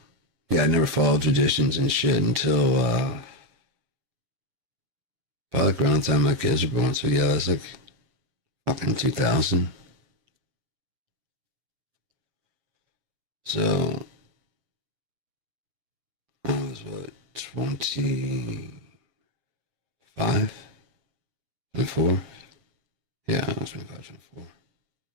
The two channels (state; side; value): late; left; 7.5 ms